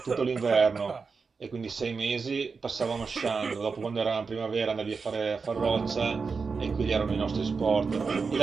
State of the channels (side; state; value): left; quieter; 4.9 dB